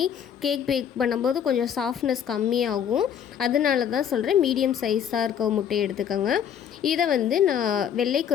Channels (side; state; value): right; quieter; 8.7 dB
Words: கேக் பேக் பண்ணும்போது கொஞ்சம் சாஃப்ட்னஸ் கம்மியாகும். அதனால தான் சொல்கிறேன், மீடியம் சைஸாக இருக்க முட்டையை எடுத்துக்கோங்க. இதை நான்